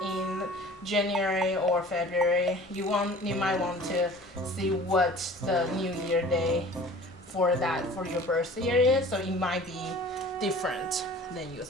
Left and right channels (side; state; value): both; normal; correlation 0.45